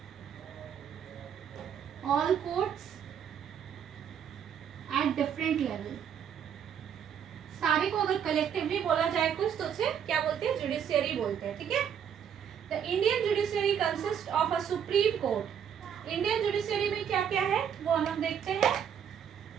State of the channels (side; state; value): left; quieter; 8.4 dB